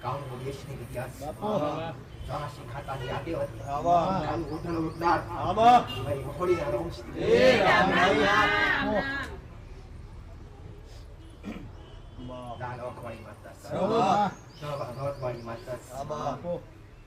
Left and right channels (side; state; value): both; identical; correlation 1.00